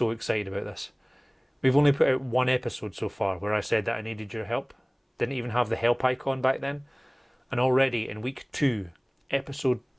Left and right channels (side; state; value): both; identical; correlation 1.00